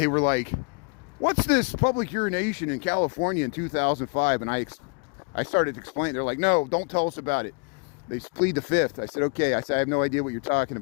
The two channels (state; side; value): quieter; right; 34.3 dB